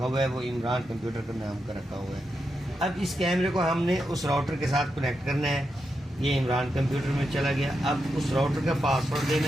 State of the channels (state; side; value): normal; both; correlation 0.86